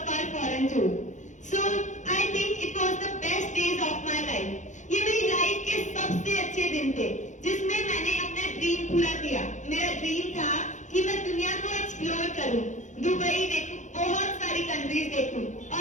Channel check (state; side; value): late; right; 0.35 ms